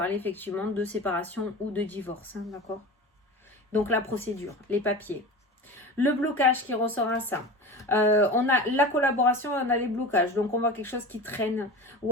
effectivement de séparation ou de divorce, hein, d'accord? Donc la procédure, les papiers. Le blocage qui ressort à ça. On a la collaboration et on a les blocages. Donc on voit quelque chose qui traîne. Ou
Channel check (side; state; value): both; normal; correlation 0.32